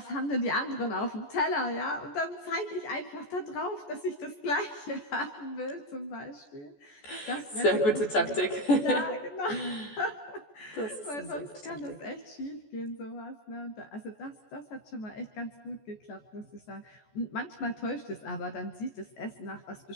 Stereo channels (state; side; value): late; right; 14 ms